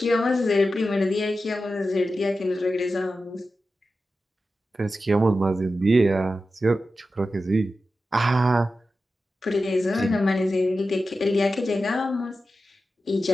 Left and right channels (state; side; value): normal; both; correlation 0.92